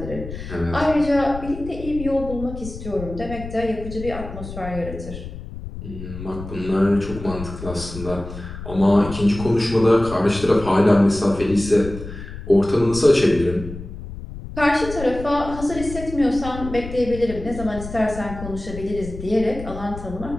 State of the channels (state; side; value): noise; left; rumble, 11 dB below the sound